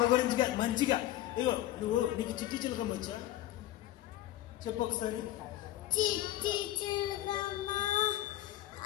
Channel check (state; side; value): quieter; right; 14.2 dB